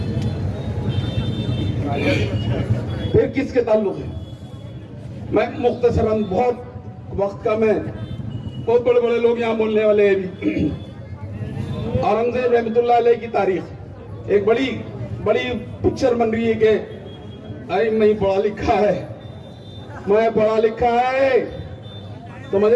फिर किसके ताल्लुक है? मैं मुख्तसरन, बहुत वक्त का, मैं बहुत बड़े बड़े लोग यहाँ बोलने वाले हैं भी। औरंगजेब रहमतुल्लाह अलैह की तारीख एक बड़ी बड़ी पिक्चर बन रही है कि अरे मैं पढ़ा लिखा है, मैं पढ़ा लिखा है, समझ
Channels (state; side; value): identical; both; correlation 1.00